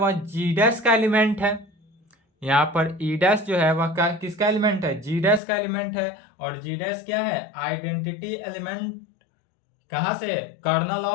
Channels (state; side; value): drops out; right; at 5.4 s